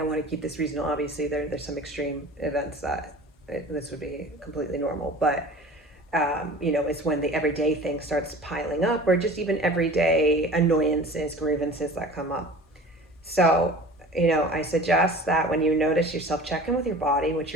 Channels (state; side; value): normal; both; correlation 0.40